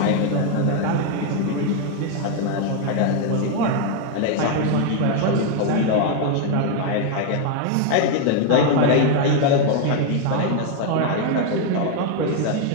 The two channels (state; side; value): different; both; correlation 0.01